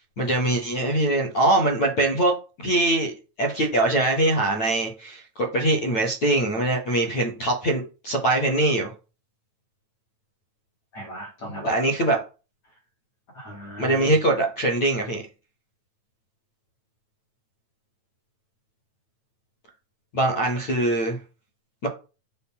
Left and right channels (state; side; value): late; right; 9.1 ms